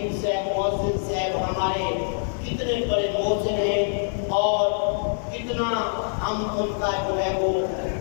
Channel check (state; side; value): silent; right; digital silence